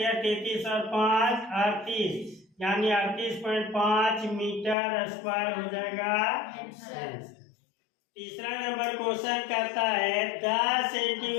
33 और 5 38 यानी 38.5 मीटर स्क्वायर हो जाएगा। तीसरा नंबर क्वेश्चन कहता है 10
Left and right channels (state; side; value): drops out; right; at 4.8 s